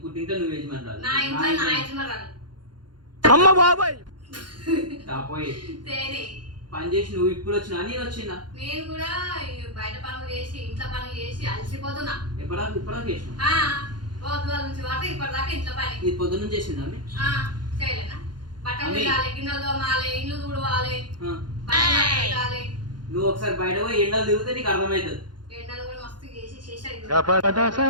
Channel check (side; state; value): left; late; 0.71 ms